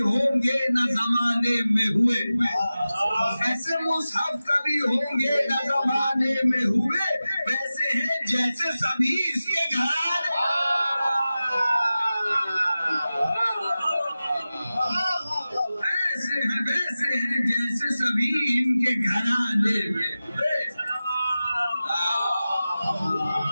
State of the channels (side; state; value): both; inverted; correlation -0.95